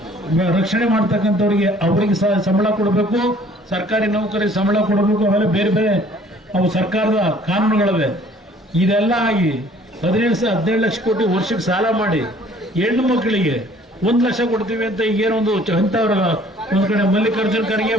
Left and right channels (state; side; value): normal; both; correlation 0.56